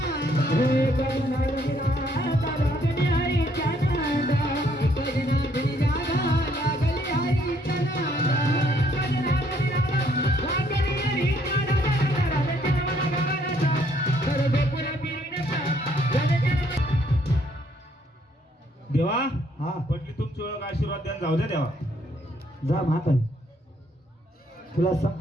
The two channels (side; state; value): both; normal; correlation 0.67